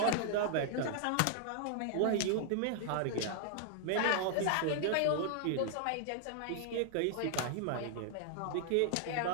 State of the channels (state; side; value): different; both; correlation -0.01